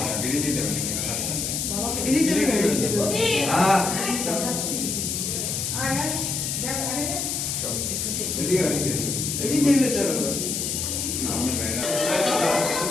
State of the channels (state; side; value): noise; left; hiss, 1 dB below the sound